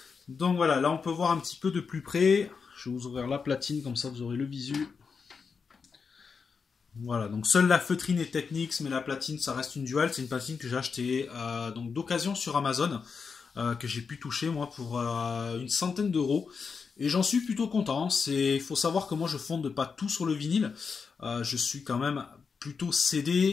Donc voilà, là on peut voir un petit peu de plus près. Je vais vous ouvrir la platine, comme ça vous aurez le visu. Voilà, donc seule la feutrine est Technics, mais la platine ça reste une Dual. C'est une platine que j'ai achetée donc d'occasion sur Amazon, que j'ai pu toucher moi pour une centaine d'euros. Et j'en suis plutôt content. Il faut savoir que moi je fonde pas tout sur le vinyle. Je suis quand même plutôt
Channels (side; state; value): right; quieter; 5.5 dB